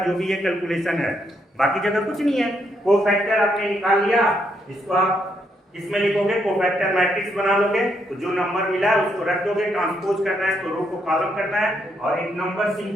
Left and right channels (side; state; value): both; normal; correlation 0.76